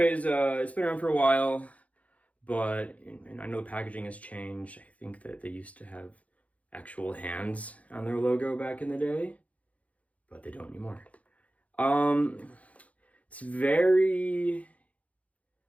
it's been around for a while. But, and I know the packaging has changed. I think that they used to have actual hands on their logo back in the day, but they don't anymore. It's very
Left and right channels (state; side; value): late; right; 0.067 ms